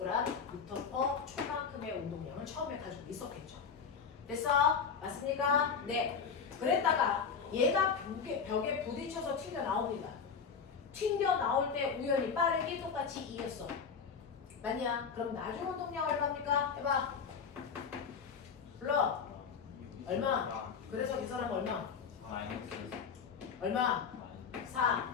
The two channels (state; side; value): quieter; right; 6.1 dB